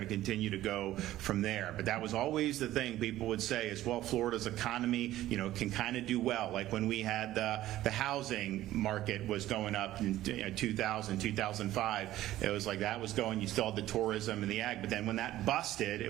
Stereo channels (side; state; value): left; quieter; 14.5 dB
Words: to continue to go from there. But that was always the thing people would say is, well, Florida's economy, you know, can kind of do well. Like when we had the housing market was going up in 2000, 2005, it was like that was going, you still had the tourism and the ag, but then when that busted,